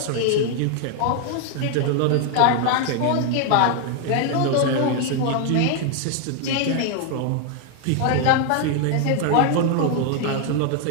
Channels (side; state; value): both; different; correlation 0.00